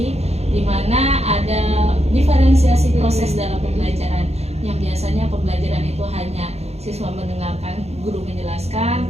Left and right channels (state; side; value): late; left; 0.31 ms